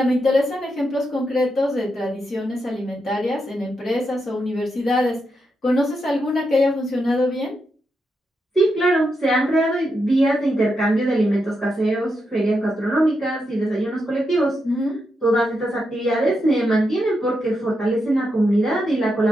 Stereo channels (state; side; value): normal; both; correlation 0.84